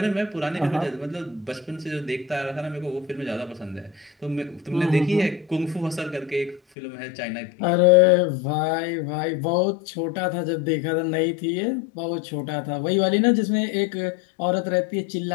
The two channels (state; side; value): drops out; right; at 6.6 s